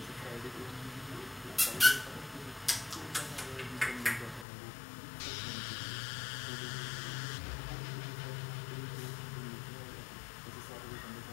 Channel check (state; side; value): drops out; right; at 4.5 s